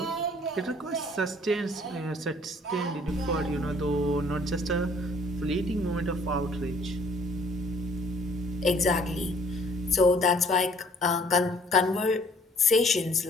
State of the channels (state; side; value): normal; both; correlation 0.58